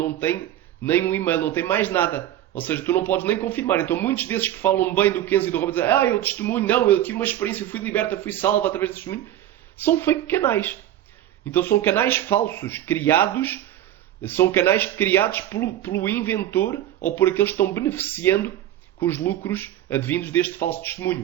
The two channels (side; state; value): left; quieter; 12.5 dB